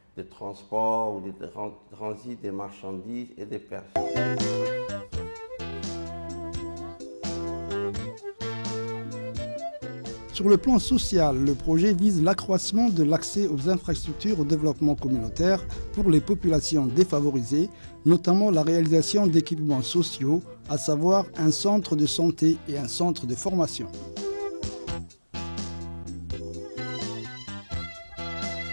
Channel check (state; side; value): inverted; both; correlation -1.00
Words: de transport ou de transit des marchandises et des personnes. Sur le plan social, le projet vise l'accroissement de l'accès aux infrastructures au développement communautaire pour les populations défavorisées, notamment la réalisation d'équipements sociaux, à savoir un centre de santé et un centre de formation.